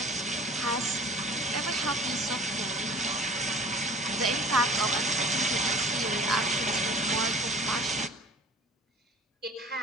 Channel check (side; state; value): both; normal; correlation 0.47